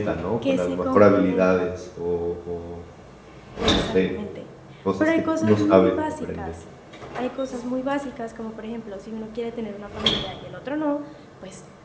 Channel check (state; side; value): identical; both; correlation 1.00